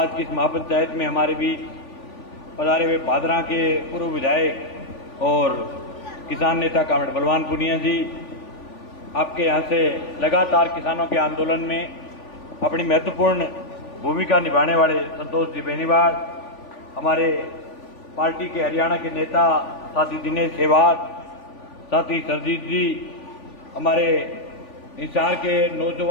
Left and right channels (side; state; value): right; late; 3.5 ms